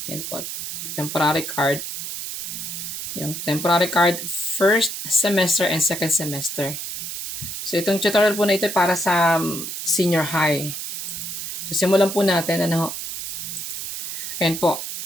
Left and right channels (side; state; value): right; noise; hiss, 5 dB below the sound